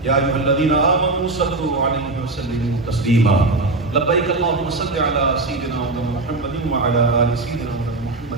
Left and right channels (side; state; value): left; quieter; 3.2 dB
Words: یا ایھا الذین آمنوا صلوا علیہ وسلموا تسلیما لبیک اللہم صل علی سیدنا محمد وعلی آل سیدنا